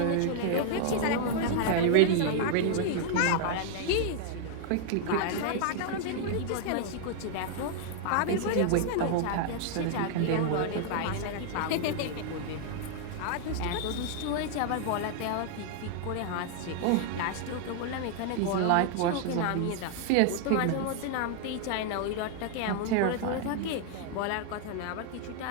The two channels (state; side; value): different; both; correlation 0.00